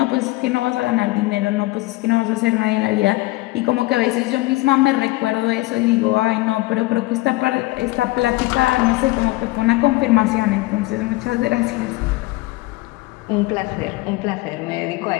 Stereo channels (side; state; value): right; quieter; 20.3 dB